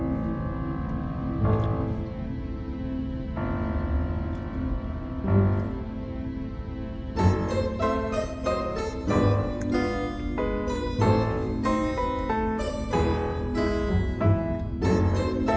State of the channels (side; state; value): both; identical; correlation 1.00